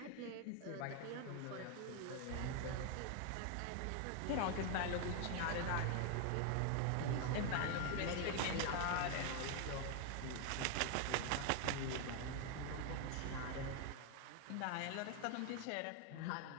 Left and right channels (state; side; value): different; both; correlation 0.01